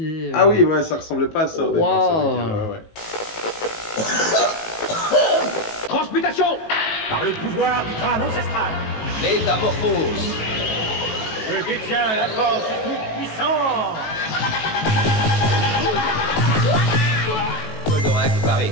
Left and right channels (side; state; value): right; late; 18 ms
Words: Ah oui, ouais, ça ressemblait pas à ça. Wow. Transmutation par le pouvoir du crâne ancestral. Métamorphose. Je détiens la force toute puissante. Goldorak paré.